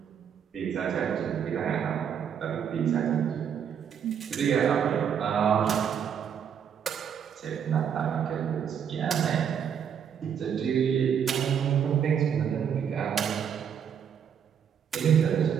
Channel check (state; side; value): quieter; left; 8.1 dB